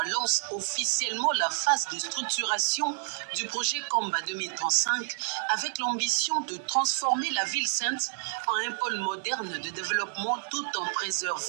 lance officiellement la phase de structuration du projet Kamba 2035 avec l'ambition de transformer la ville sainte en un pôle moderne de développement tout en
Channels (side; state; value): left; silent; digital silence